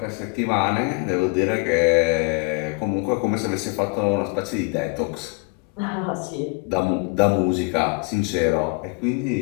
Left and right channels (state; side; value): quieter; right; 30.4 dB